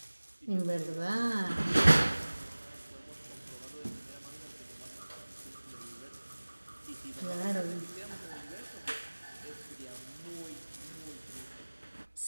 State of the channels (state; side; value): inverted; both; correlation -1.00